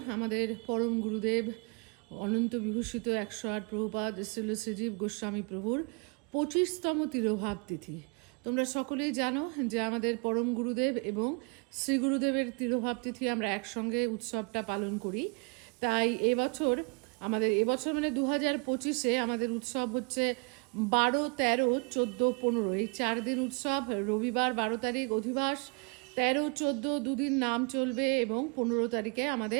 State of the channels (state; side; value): quieter; left; 33.8 dB